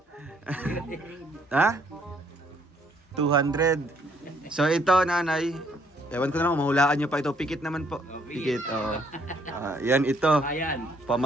Ha? 200. So ito, nanay. Ewan ko na lang, mahulaan nyo pa ito. Pikit naman po. Pikit, oo. Yan, ito. Ayan.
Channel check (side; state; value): both; normal; correlation 0.66